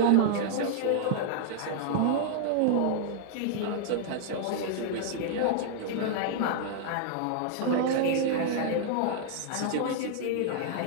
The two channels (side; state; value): both; different; correlation -0.01